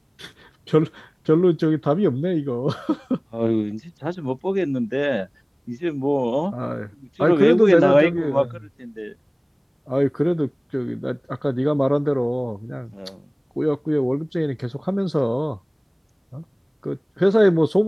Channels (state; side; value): identical; both; correlation 1.00